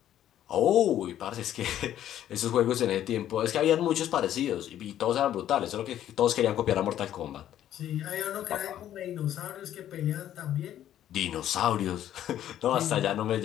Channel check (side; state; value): right; quieter; 11.5 dB